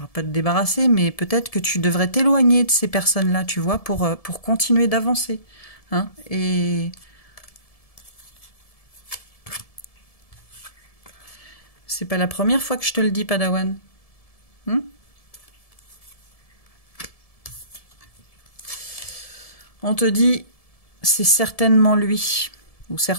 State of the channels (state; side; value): late; right; 1.7 ms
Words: pas te débarrasser, mais peut-être que tu devrais t'éloigner de ces personnes-là, tu vois, pour continuer d'avancer. Hein, et c'est pas la première fois que je te le dis, Padawan. On te dit, c'est certainement lui ou